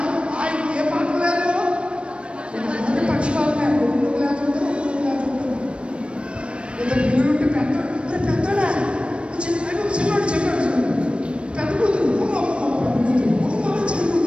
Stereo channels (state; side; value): late; left; 0.058 ms